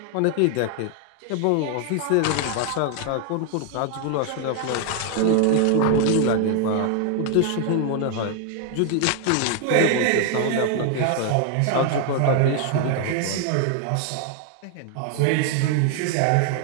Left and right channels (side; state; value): both; different; correlation 0.00